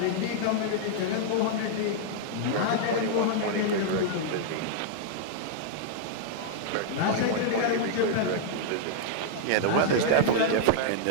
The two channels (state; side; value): different; both; correlation -0.01